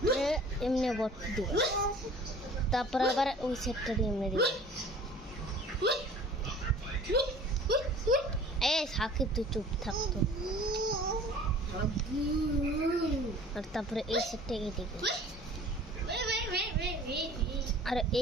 এমনি বট দিবা তারপরে আবার ওই সেটটা দিয়ে এমনি দিবা সাকিব তুই চুপ থাকতো আর তারপরে এই সেটটা এদিকে আর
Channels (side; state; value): both; normal; correlation 0.47